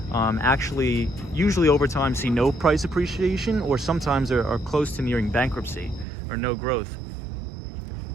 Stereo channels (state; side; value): drops out; left; at 6.1 s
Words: actually usually over time see no price appreciation, or sometimes are close to nearing bankruptcy or no growth.